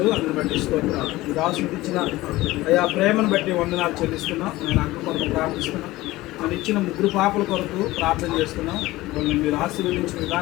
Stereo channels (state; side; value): quieter; right; 18.3 dB